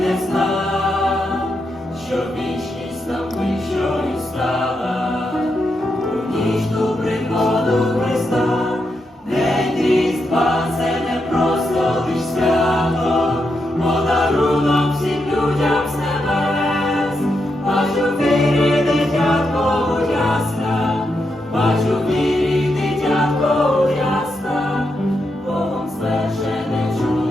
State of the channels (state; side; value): normal; both; correlation 0.83